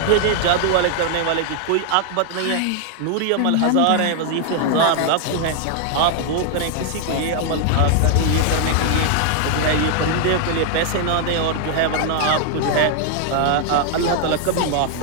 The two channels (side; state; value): both; different; correlation 0.00